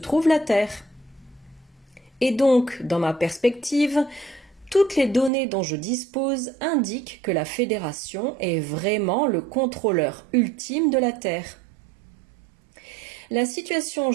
la Terre. Et donc, dans ma perspective, toutes les données dont je dispose indiquent que la Fédération est vraiment le contrôleur ultime de la Terre. La situation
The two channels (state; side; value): drops out; left; at 5.3 s